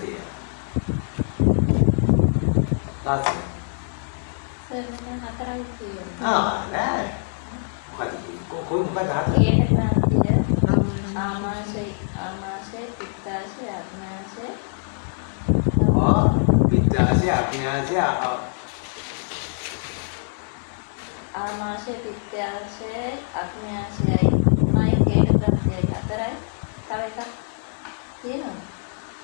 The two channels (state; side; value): silent; right; digital silence